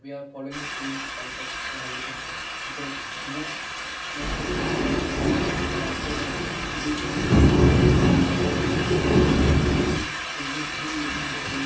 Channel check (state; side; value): identical; both; correlation 1.00